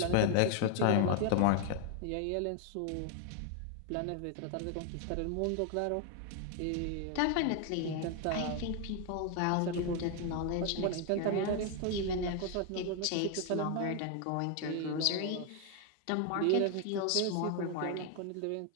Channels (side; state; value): both; different; correlation 0.01